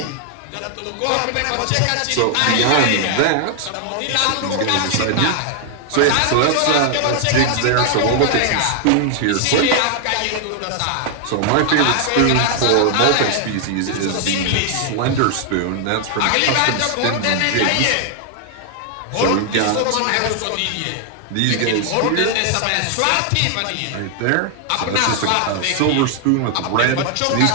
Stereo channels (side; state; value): both; different; correlation 0.00